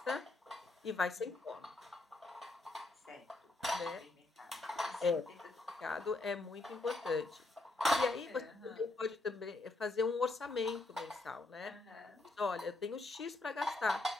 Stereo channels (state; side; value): quieter; right; 3.0 dB